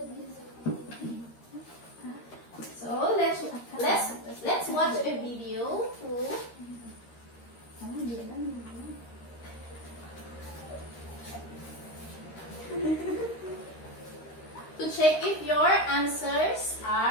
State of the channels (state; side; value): late; right; 13 ms